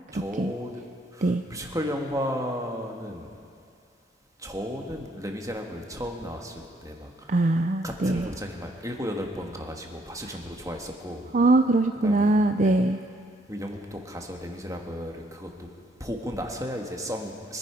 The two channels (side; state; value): both; normal; correlation 0.69